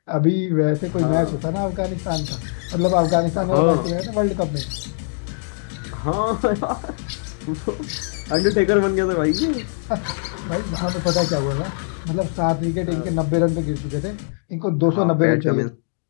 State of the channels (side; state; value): right; silent; digital silence